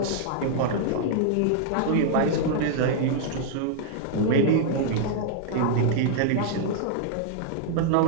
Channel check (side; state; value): both; different; correlation -0.01